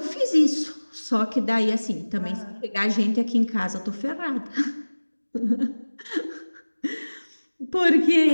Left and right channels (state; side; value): inverted; both; correlation -1.00